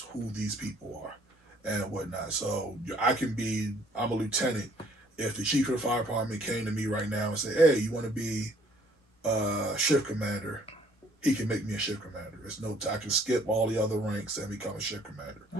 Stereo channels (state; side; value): normal; both; correlation 0.60